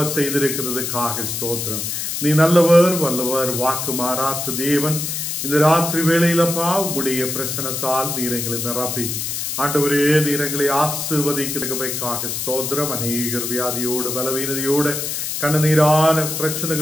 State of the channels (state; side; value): noise; left; hiss, 3 dB below the sound